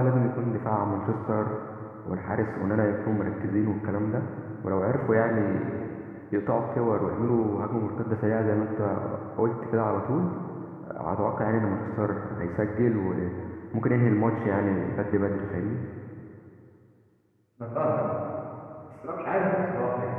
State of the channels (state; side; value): identical; both; correlation 1.00